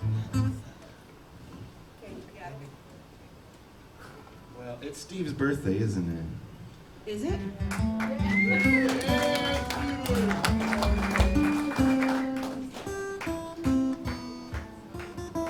Well, it's Steve's birthday, isn't it? Is it?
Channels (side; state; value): both; identical; correlation 1.00